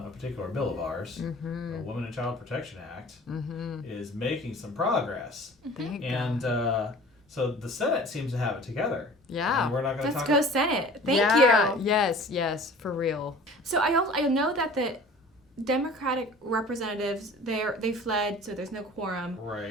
a particular bill of ours, the Women and Child Protection Act, is making some progress. And so the Senate seems to have it together. Yeah. And we're not going to Let's talk go Senate. Thank you. Yes, for real. So I know that the Democratic representatives they fled, so there's no quorum.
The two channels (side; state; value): both; normal; correlation 0.45